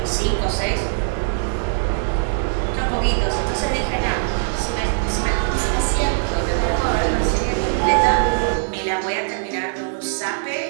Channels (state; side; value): silent; left; digital silence